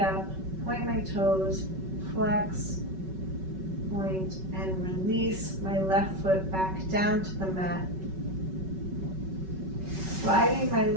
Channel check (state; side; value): late; left; 5.3 ms